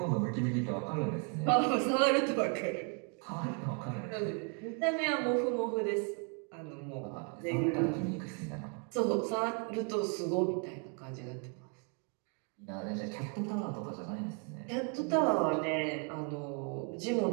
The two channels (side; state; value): left; quieter; 37.6 dB